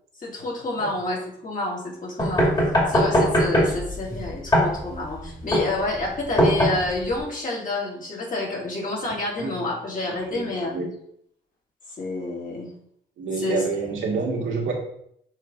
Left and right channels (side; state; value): both; normal; correlation 0.52